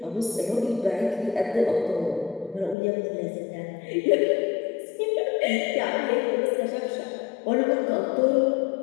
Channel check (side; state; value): right; drops out; at 2.8 s